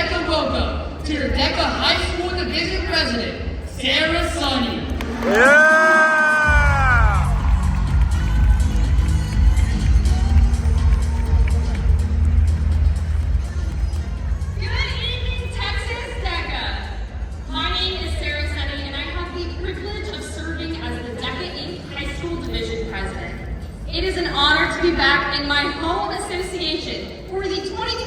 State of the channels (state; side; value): identical; both; correlation 1.00